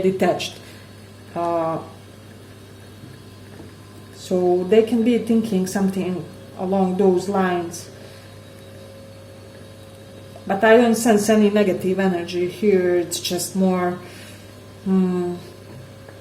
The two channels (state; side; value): identical; both; correlation 1.00